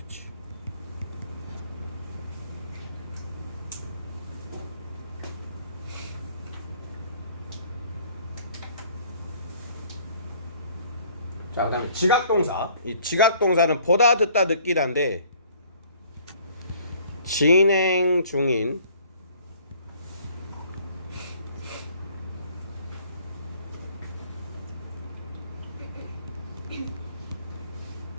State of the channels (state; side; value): inverted; both; correlation -0.57